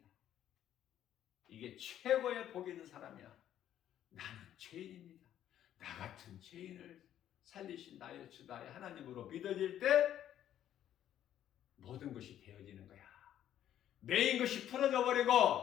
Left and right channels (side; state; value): right; quieter; 11.1 dB